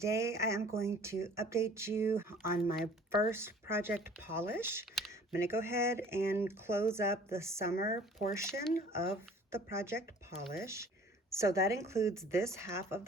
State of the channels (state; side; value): normal; both; correlation 0.50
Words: I am going to update you on my first project polish. I'm going to go ahead and close up the summer portion of the project polish. So that includes this half of